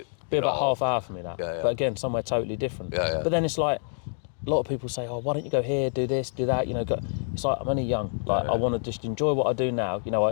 Be about half hour for me, that. Yeah. But again, somewhere totally different. Yeah. But then it's like, a lot of people say, oh, why don't you go here, do this, do that, it's like, I'm only young. Like, I want to just enjoy what I do now.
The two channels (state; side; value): silent; right; digital silence